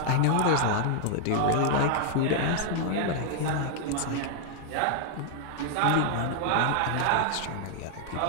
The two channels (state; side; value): different; both; correlation 0.00